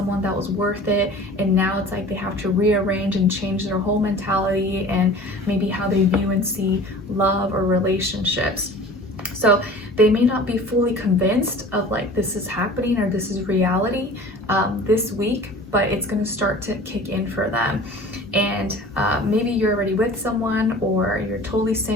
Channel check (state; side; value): normal; both; correlation 0.42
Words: that was worth it, and now it's like they have to rearrange and change their whole mentality and maybe how they view and see love or relationships. So they may not be fully convinced of like this is happening or this is reality this week, but it's going to start to kick in for them. And maybe you're already with someone, or you're totally